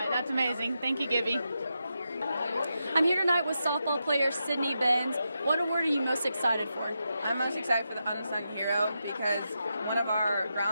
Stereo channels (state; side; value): inverted; both; correlation -0.86